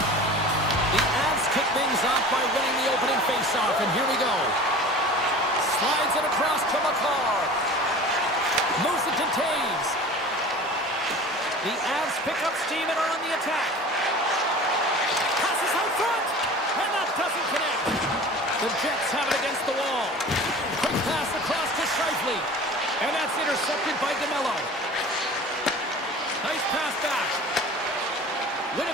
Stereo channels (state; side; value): normal; both; correlation 0.40